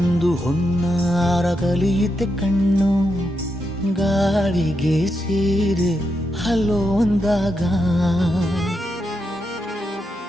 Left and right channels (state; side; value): normal; both; correlation 0.84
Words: ಹೊನ್ನಾರ ಕಲಿಯುತ್ತೆ ಕಣ್ಣು ಗಾಳಿಗೆ ಸೀರೆ ಹಲೋ ಅಂದಾಗ